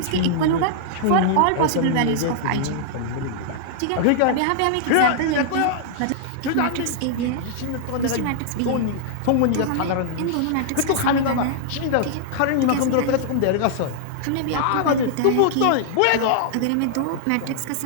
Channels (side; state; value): both; different; correlation -0.01